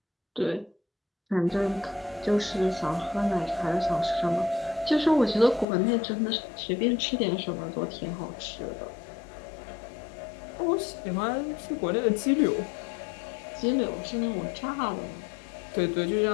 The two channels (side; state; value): right; drops out; at 5.7 s